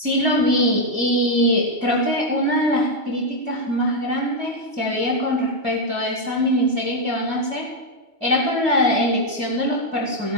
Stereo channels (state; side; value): late; left; 2.4 ms